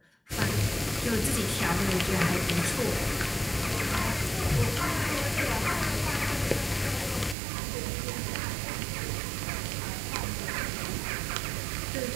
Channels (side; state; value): left; drops out; at 7.4 s